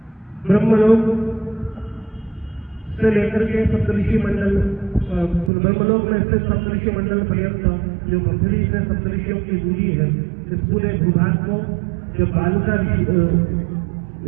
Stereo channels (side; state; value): left; drops out; at 5.5 s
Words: ब्रह्मलोक से लेकर के सप्तऋषि मंडल, ब्रह्मलोक में स्थित सप्तऋषि मंडल पर्यंत जो पृथ्वी से सप्तऋषियों की दूरी है, इस पूरे भूभाग को जब बालुका